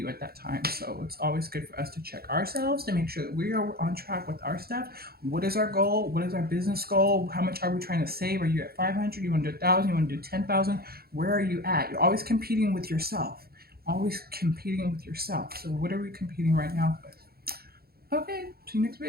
at that time. So it's always good for us to check ourselves to make sure that we are on track with our stuff. What is our goal? What is our business goal? How much are we trying to save? Are you at 500? You want to do 1,000? You want to do 10,000? Where are you at? You're always competing with yourself. Always competing with yourself. So what are we competing right now with? Okay, see you next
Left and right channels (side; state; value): left; late; 0.45 ms